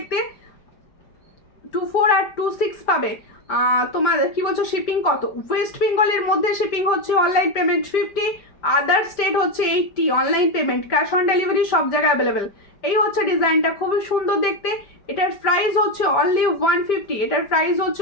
24 আর 26 পাবে। তোমার কি বলছো শিপিং কত? ওয়েস্ট বেঙ্গলের মধ্যে শিপিং হচ্ছে অনলাইন পেমেন্ট 50, আদার স্টেট হচ্ছে 80, online payment, cash on delivery সব জায়গায় অ্যাভেলেবেল। এই হচ্ছে ডিজাইনটা, খুবই সুন্দর দেখতে, এটার প্রাইস হচ্ছে অনলি 150, এটার প্রাইস হচ্ছে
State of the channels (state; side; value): late; right; 5.1 ms